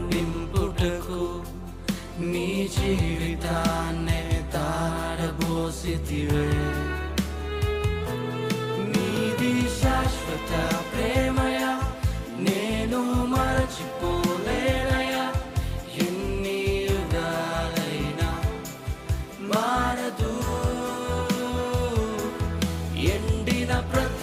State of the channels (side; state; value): both; identical; correlation 1.00